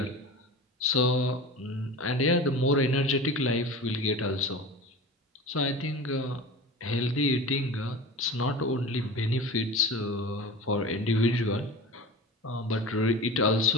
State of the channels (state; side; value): normal; both; correlation 0.33